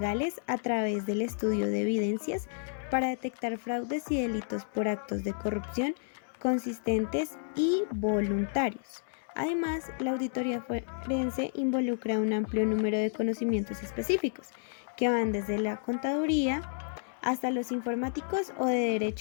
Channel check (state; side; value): silent; right; digital silence